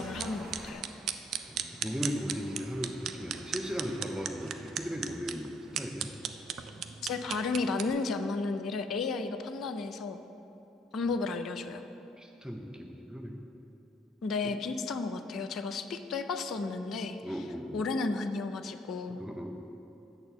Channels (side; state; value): both; normal; correlation 0.65